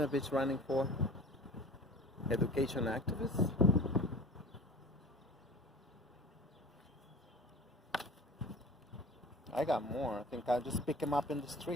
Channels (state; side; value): normal; both; correlation 0.40